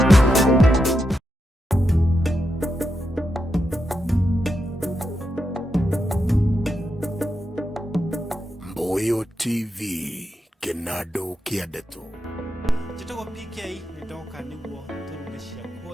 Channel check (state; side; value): normal; both; correlation 0.85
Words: Mbuyu TV Kinado Kiadeto. Jitogo PK nĩ ndoka nĩguo tũruge cia